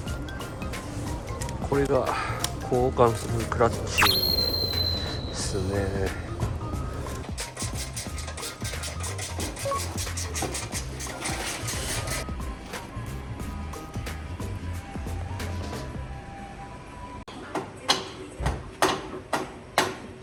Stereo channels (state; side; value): identical; both; correlation 1.00